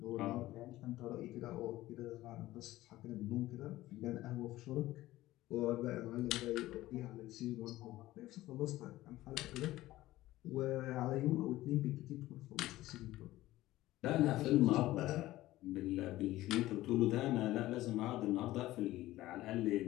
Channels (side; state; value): right; quieter; 16.3 dB